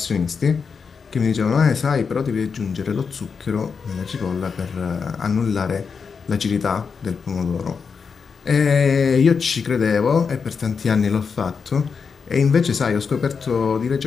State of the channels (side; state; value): right; quieter; 5.7 dB